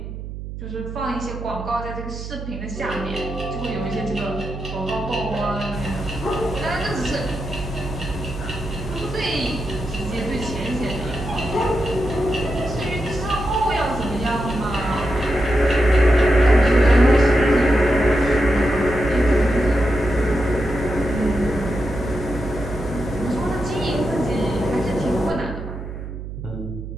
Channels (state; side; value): noise; right; hum, 9 dB below the sound